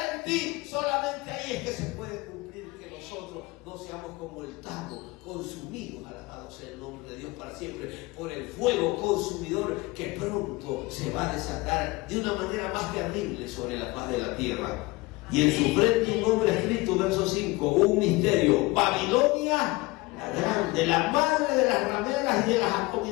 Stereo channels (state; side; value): quieter; right; 22.5 dB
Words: en ti. Solamente ahí es que se puede cumplir que nosotros no seamos como el tamo, consumidos, alabado sea el nombre de Dios para siempre, por el fuego consumidor que pronto se va a desatar de una manera más terrible sobre la faz de la tierra. Y en su frente un nombre escrito, verso 5, un misterio: Babilonia la grande, la madre de las rameras y de las